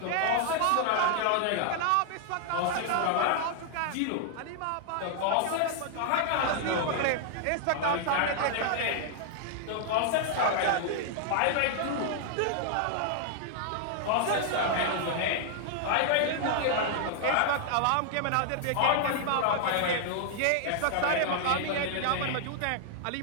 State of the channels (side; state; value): both; different; correlation -0.01